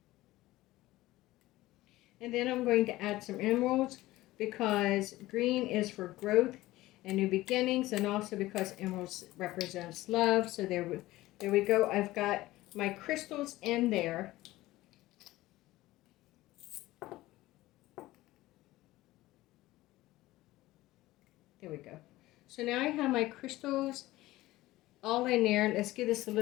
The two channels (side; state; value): right; quieter; 17.4 dB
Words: And then I'm going to add some emeralds, because green is for growth and new beginnings, and also because emeralds represents love. So there we go. I've got my crystals in there. There we go. So now I have my crystals all in there. Let's give this a